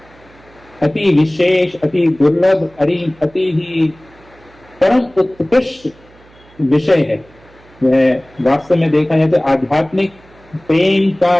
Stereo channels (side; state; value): right; noise; hum, 27 dB below the sound